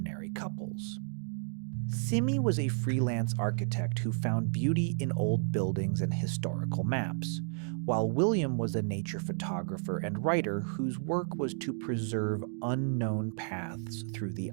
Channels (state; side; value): silent; left; 56 dB below the other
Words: couples. Simi was a freelance architect who found beauty in old buildings and historical maps, while William was a nature photographer and writer whose work was to preserve unknown paths through the